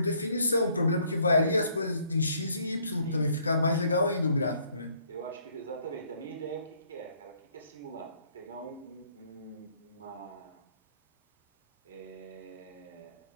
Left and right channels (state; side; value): inverted; both; correlation -0.65